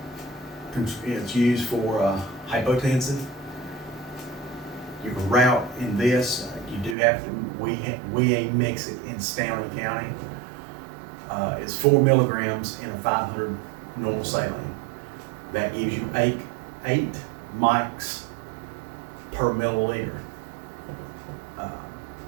It's used for hypotensive. You can route in this. You do have to. We mix it in Stanley County. It's 4 milligrams in a 500 normal saline. That gives you 8 mics per milliliter.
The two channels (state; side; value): drops out; left; at 7.0 s